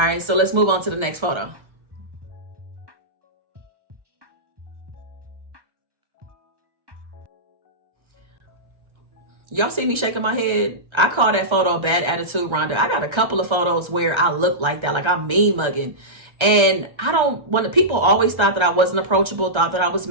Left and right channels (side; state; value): left; late; 1.3 ms